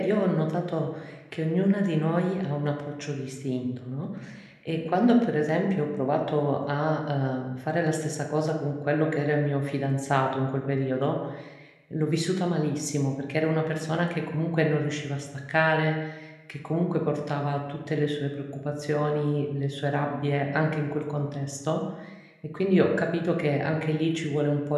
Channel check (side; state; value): both; identical; correlation 1.00